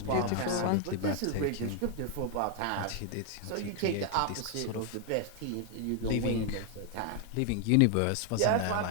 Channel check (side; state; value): both; different; correlation 0.00